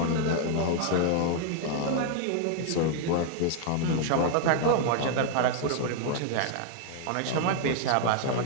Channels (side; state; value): both; different; correlation 0.00